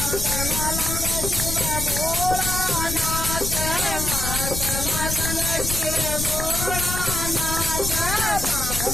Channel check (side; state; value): left; noise; rumble, 4 dB below the sound